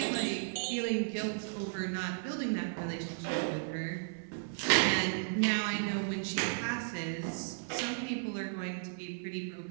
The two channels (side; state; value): left; silent; 55 dB below the other